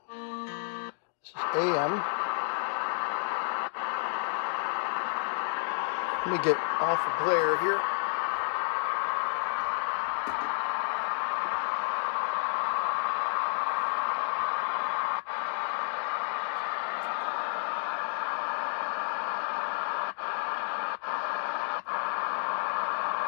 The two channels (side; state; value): right; silent; 57 dB below the other